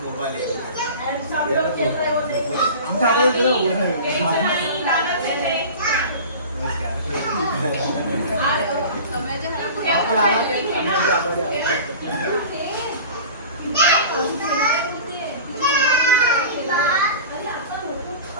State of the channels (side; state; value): both; inverted; correlation -0.36